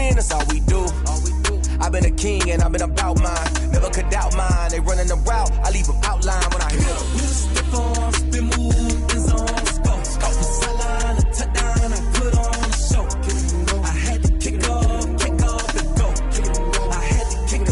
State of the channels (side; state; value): both; identical; correlation 1.00